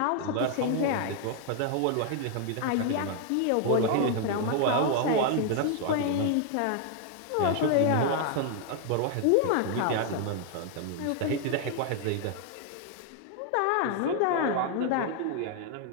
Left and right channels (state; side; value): different; both; correlation 0.00